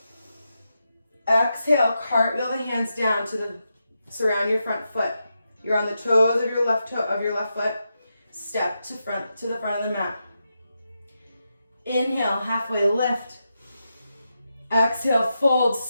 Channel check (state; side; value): inverted; both; correlation -0.86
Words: Exhale, cartwheel the hands down to surround your front foot. You're on the toes of your left foot. Step to the front of the mat. Inhale, halfway lift. Exhale, fold,